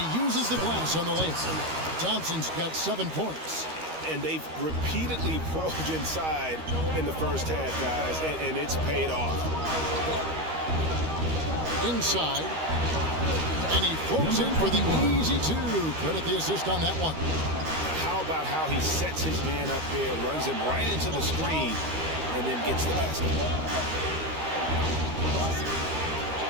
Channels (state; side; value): late; left; 13 ms